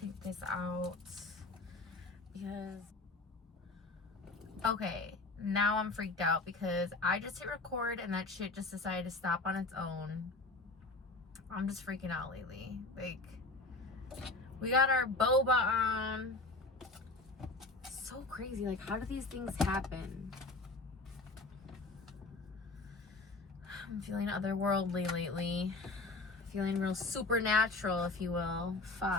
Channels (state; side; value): quieter; right; 3.2 dB